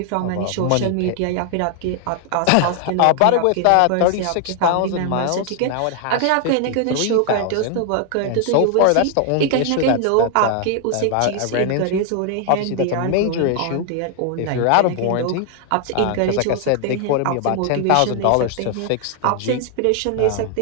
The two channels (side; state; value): both; different; correlation 0.00